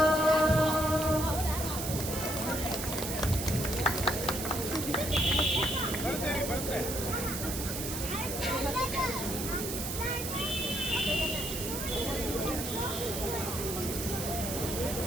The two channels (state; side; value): noise; right; hiss, 5 dB below the sound